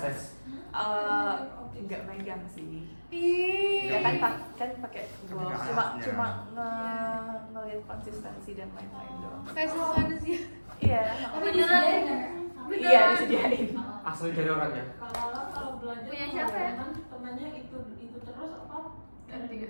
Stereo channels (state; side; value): inverted; both; correlation -1.00